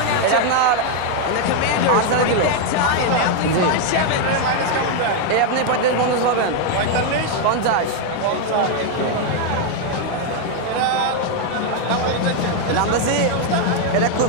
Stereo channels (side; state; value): both; different; correlation 0.01